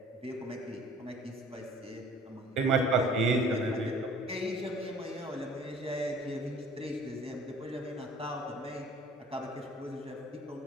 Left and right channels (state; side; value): normal; both; correlation 0.51